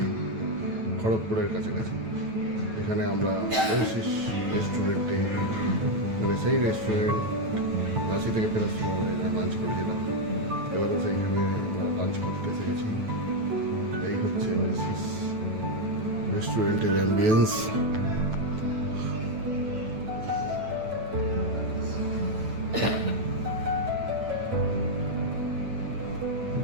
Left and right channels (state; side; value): late; left; 9.1 ms